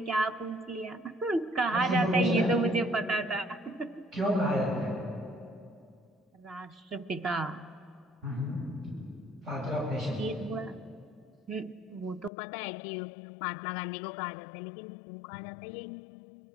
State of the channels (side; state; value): right; drops out; at 12.3 s